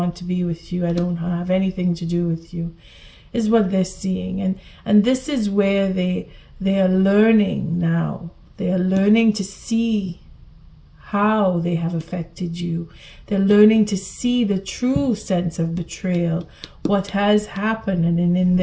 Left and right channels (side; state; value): both; identical; correlation 1.00